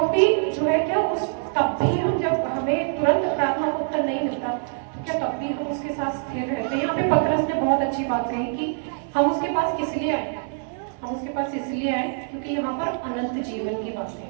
भी जो है क्या उस तब भी हम जब हमें तुरंत प्रार्थना का उत्तर नहीं मिलता तो क्या तब भी हम उसके साथ स्थिर रहते हैं। यहाँ पे पतरस ने बहुत अच्छी बात कही कि हम उसके पास किस लिए आए, हम उसके पास इसलिए आए क्योंकि यहाँ पर अनंत जीवन की बात है,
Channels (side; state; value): left; silent; 62 dB below the other